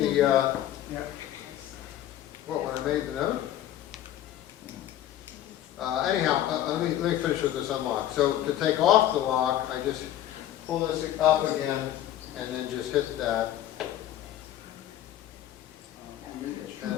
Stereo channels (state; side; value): quieter; right; 12.3 dB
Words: Yeah. what, when I made the note? Anyhow, let me finish with this unlock. So to take off the lock, I just pull this up again and then just hit that. And